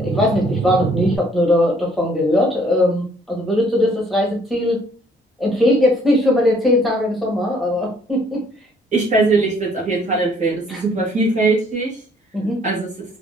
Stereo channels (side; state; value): both; normal; correlation 0.62